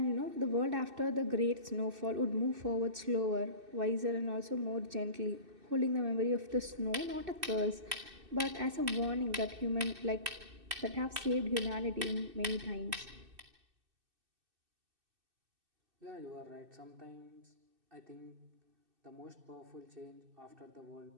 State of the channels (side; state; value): left; late; 2.6 ms